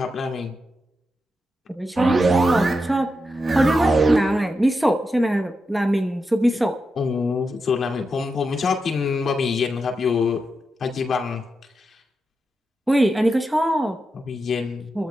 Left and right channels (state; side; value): normal; both; correlation 0.87